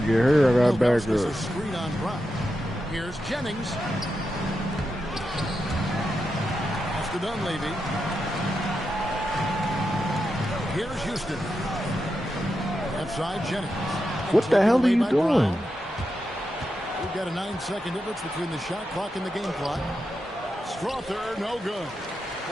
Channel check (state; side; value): normal; both; correlation 0.87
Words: get hurt, I got back a up. screen on Brown. Here's Jennings. Pass to Dunleavy. Here's Houston. Left side, Jennings. What the hell are you doing? We've got a 9-second difference between the shot clock and the game clock. Strother, no good.